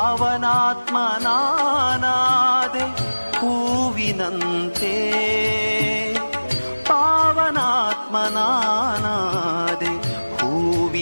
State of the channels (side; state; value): both; inverted; correlation -1.00